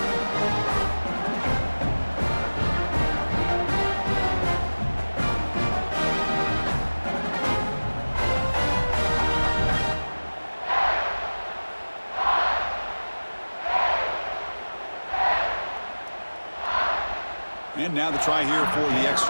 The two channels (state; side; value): inverted; both; correlation -1.00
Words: And now the try here for the